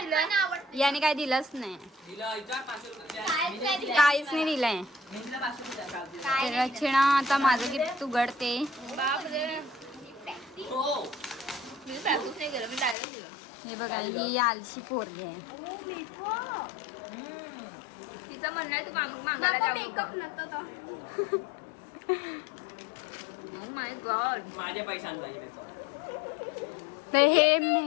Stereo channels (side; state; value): right; drops out; at 13.0 s